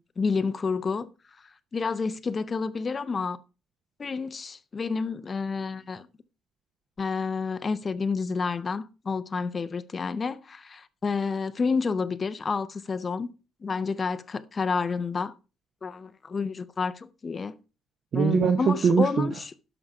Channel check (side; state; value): both; normal; correlation 0.83